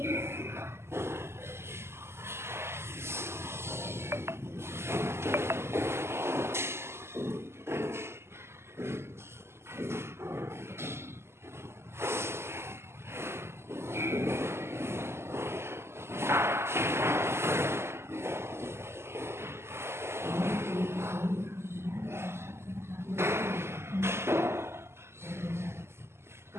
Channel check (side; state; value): left; late; 0.12 ms